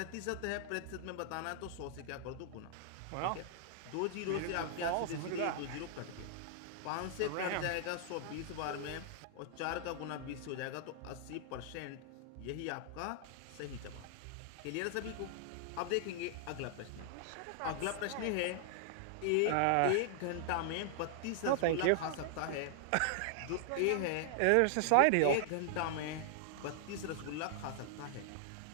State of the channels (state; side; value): different; both; correlation -0.01